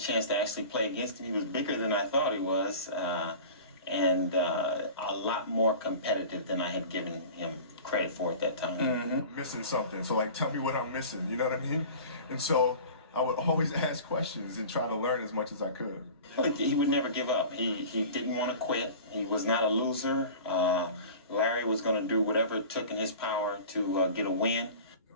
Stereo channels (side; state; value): both; inverted; correlation -0.39